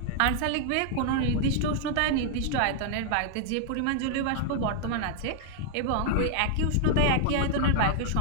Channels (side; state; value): both; different; correlation 0.00